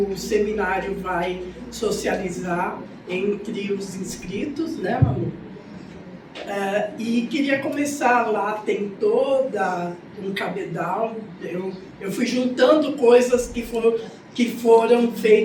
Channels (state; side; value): identical; both; correlation 1.00